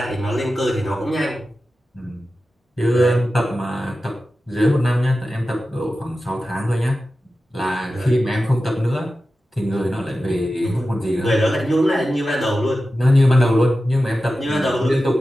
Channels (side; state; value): both; normal; correlation 0.93